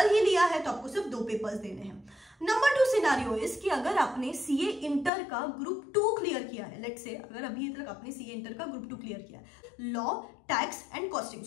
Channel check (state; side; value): drops out; right; at 5.1 s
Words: ही लिया है तो आपको सिर्फ 2 पेपर्स देने हैं। नंबर 2 सिनारियो इज कि अगर आपने CA इंटर का ग्रुप 2 क्लियर किया है, लेट्स से अगर अभी तक आपने CA इंटर का ग्रुप 2 क्लियर किया है, law, tax and costing,